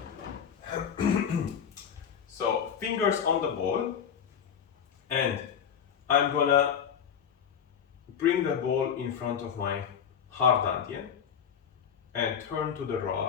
So, fingers on the ball. And I'm gonna bring the ball in front of my hard dantian and turn to the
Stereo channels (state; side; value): quieter; right; 7.9 dB